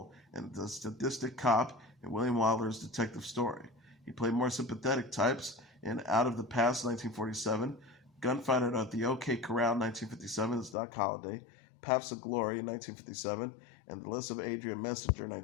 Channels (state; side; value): drops out; right; at 10.8 s